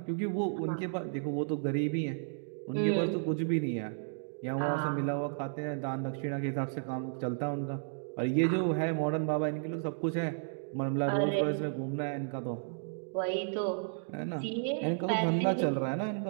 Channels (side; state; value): left; silent; digital silence